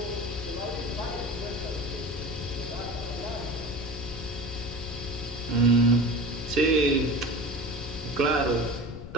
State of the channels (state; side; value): noise; left; rumble, 13 dB below the sound